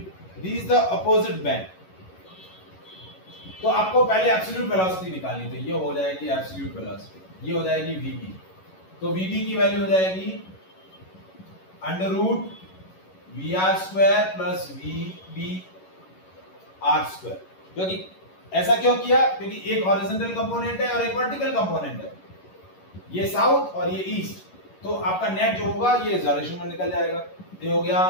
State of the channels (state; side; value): late; right; 11 ms